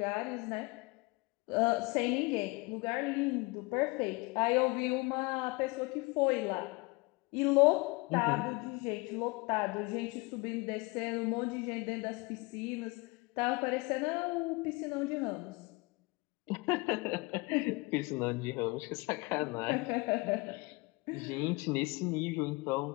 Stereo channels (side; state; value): right; quieter; 26.1 dB